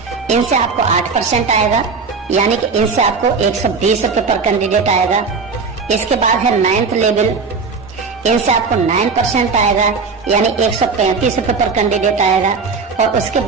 इनसे आपको 8% आएगा, यानी कि इनसे आपको 120 रुपए पर कैंडिडेट आएगा। इसके बाद है नाइन्थ लेवल, इनसे आपको 9% आएगा, यानी 135 रुपए पर कैंडिडेट आएगा। और उसके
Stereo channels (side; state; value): left; quieter; 4.9 dB